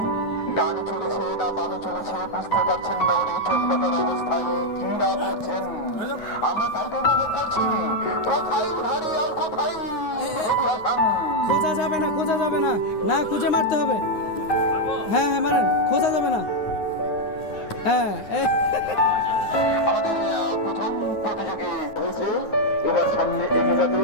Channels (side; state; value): right; late; 9.6 ms